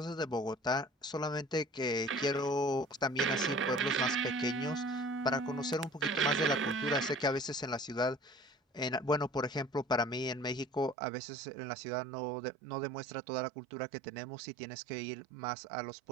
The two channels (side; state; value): left; drops out; at 11.0 s